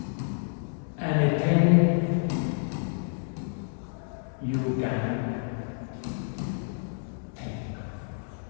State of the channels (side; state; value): right; silent; digital silence